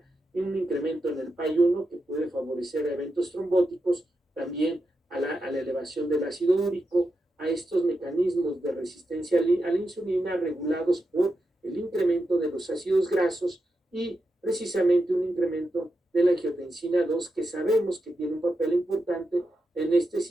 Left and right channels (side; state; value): both; normal; correlation 0.87